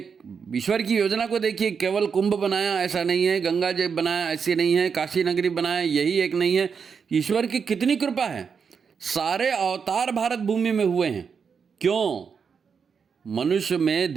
ईश्वर की योजना को देखिए, केवल कुंभ बनाया ऐसा नहीं है, गंगा जी बनाया ऐसी नहीं है, काशी नगरी बनाया यही एक नहीं है। ईश्वर की कितनी कृपा है, सारे अवतार भारत भूमि में हुए हैं। क्यों? मनुष्य में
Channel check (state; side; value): quieter; left; 6.2 dB